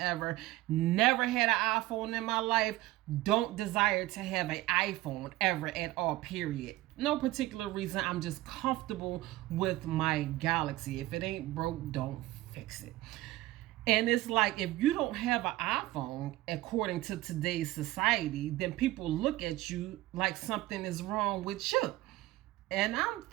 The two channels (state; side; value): quieter; left; 17.6 dB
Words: Never had an iPhone in my life. Don't desire to have an iPhone ever at all, period. No particular reason. I'm just comfortable with my Galaxy. If it ain't broke, don't fix it. And it's like, if you don't have an iPhone, according to today's society, then people look at you like something is wrong with you. And I'm